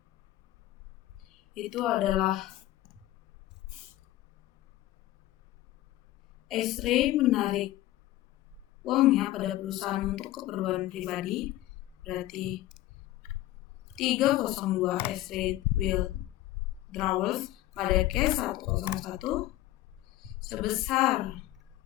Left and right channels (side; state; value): right; quieter; 15.6 dB